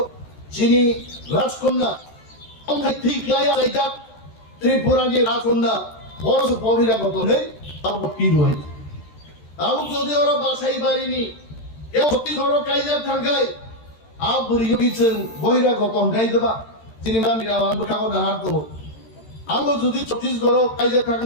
চিনি রাজকন্যা অঙ্গাই ঠিক লাইয়া যাইতা ত্রিপুরা নি রাজকন্যা বড় বহিরাগত নেই আবো কি রয় আবু যদি ওরা বাসাই বাড়িনি কেউ ছত্তিশগড় কাইজার থাকায় আব বুড়িও গিয়েছেন বহিরাগত গাই দেবা সিনেমা মিরা আবু ঠাকুর না হার দেবো আবু যদি ছত্তিশগড় কাইজার থাকুন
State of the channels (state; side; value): late; right; 13 ms